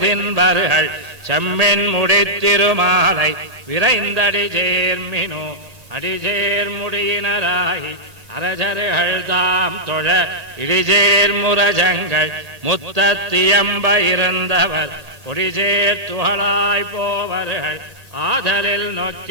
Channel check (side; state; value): left; late; 1.8 ms